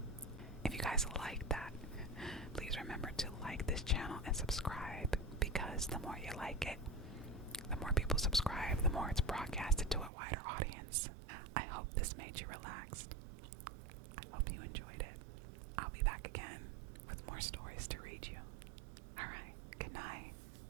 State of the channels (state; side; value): drops out; left; at 10.1 s